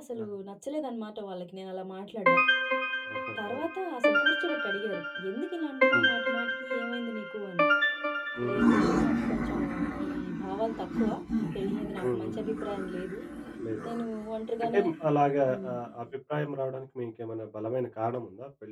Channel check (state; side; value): identical; both; correlation 1.00